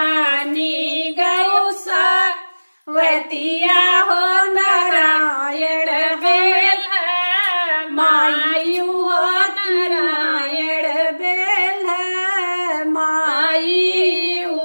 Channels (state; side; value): inverted; both; correlation -1.00